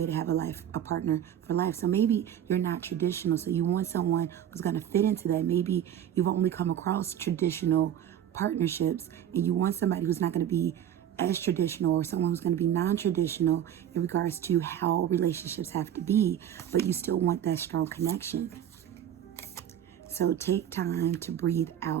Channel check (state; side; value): quieter; left; 10.3 dB